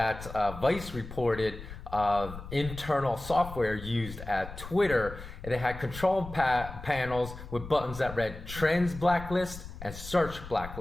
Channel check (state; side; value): noise; left; rumble, 12 dB below the sound